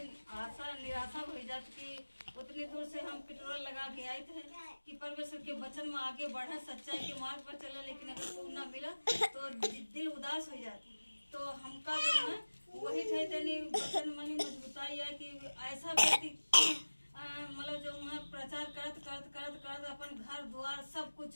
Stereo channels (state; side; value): inverted; both; correlation -1.00